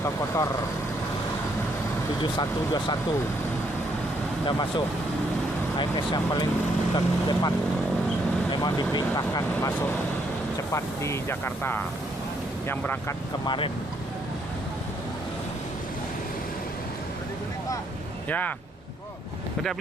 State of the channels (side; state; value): both; normal; correlation 0.72